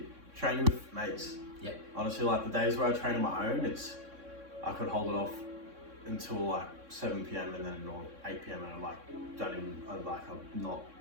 training with mates. Honestly, like the days where I train on my own, I could hold it off until like 7 p.m. and then or 8 p.m. and I'm not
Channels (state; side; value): late; left; 3.6 ms